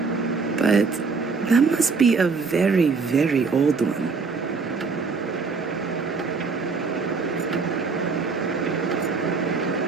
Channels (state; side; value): quieter; left; 4.7 dB